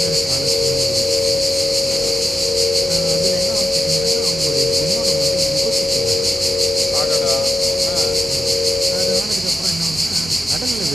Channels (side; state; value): both; normal; correlation 0.91